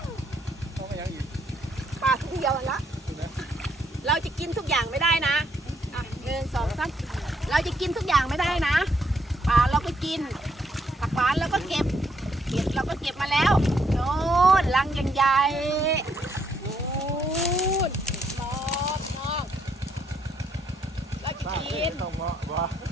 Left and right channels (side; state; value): both; normal; correlation 0.73